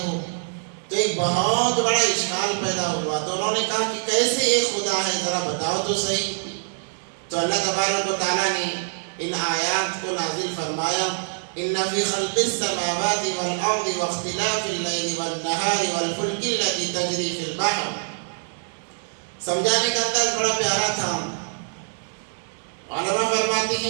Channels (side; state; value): left; silent; 62 dB below the other